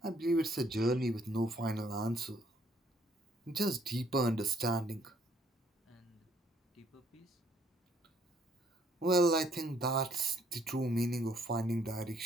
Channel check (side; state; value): both; normal; correlation 0.66